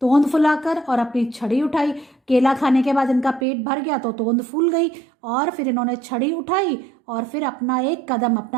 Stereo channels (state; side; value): drops out; left; at 3.5 s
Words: तोंद फुलाकर और अपनी छड़ी उठाई। केला खाने के बाद इनका पेट भर गया तो तोंद फूल गई, और फिर इन्होंने छड़ी उठाई और फिर अपना एक कदम,